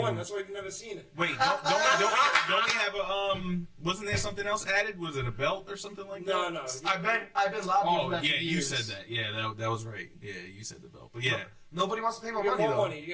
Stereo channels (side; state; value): both; identical; correlation 1.00